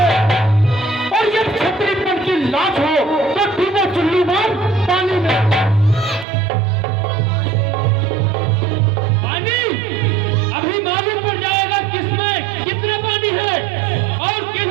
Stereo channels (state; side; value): drops out; left; at 6.2 s